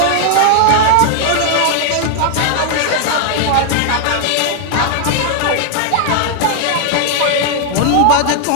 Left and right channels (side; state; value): both; different; correlation 0.00